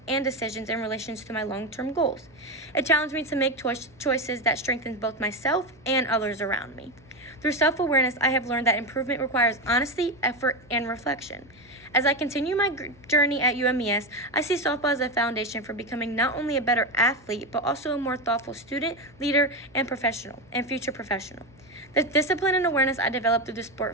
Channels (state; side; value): noise; right; hum, 28 dB below the sound